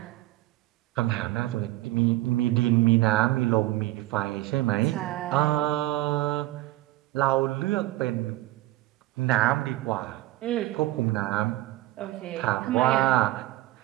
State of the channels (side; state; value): left; quieter; 17.5 dB